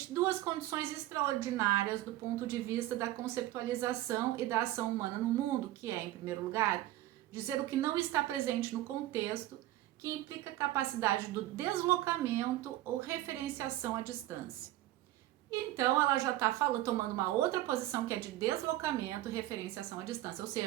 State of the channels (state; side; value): quieter; left; 15.0 dB